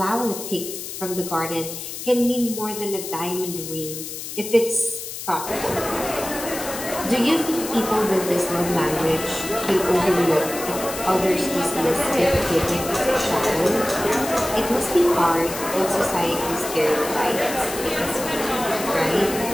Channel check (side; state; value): left; noise; hiss, 8 dB below the sound